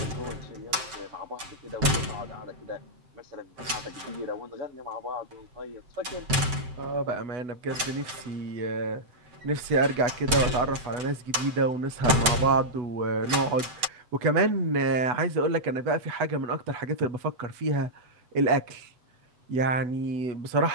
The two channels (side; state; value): left; late; 7.7 ms